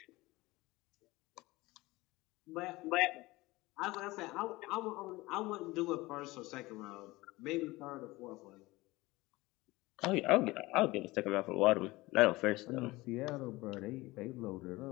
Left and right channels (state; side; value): quieter; right; 20.5 dB